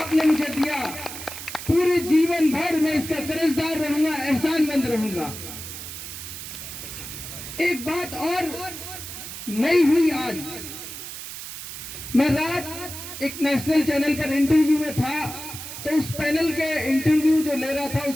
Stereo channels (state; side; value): noise; right; hiss, 10 dB below the sound